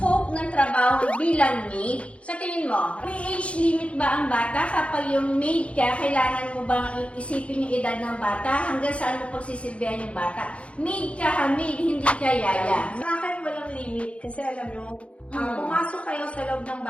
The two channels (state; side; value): late; right; 0.062 ms